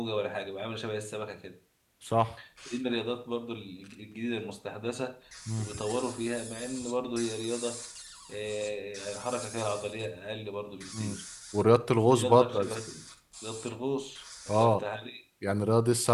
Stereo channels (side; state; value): both; identical; correlation 1.00